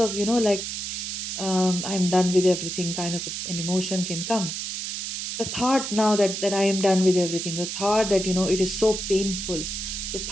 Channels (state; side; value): noise; right; hiss, 4 dB below the sound